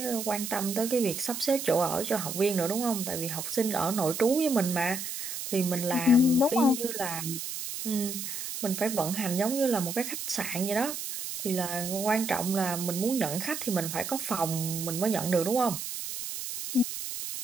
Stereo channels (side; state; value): right; noise; hiss, 6 dB below the sound